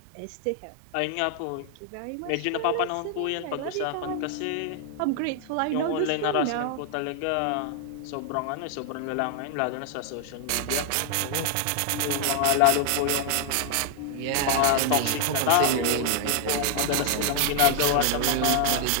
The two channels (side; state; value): both; different; correlation 0.00